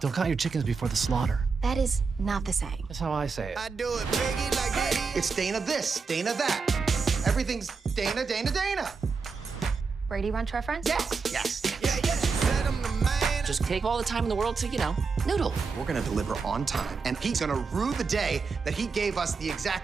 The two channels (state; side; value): quieter; left; 4.9 dB